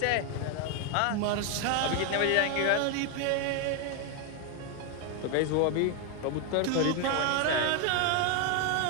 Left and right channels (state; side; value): different; both; correlation 0.01